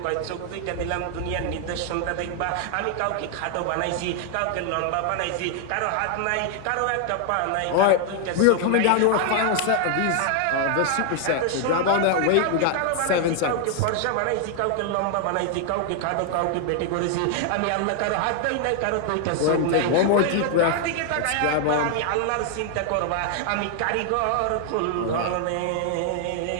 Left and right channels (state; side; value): different; both; correlation 0.00